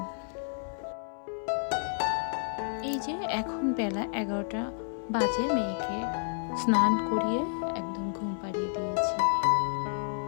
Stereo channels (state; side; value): silent; right; 58 dB below the other